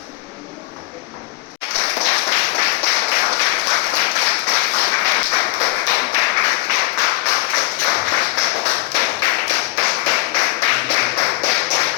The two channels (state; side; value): quieter; right; 20.1 dB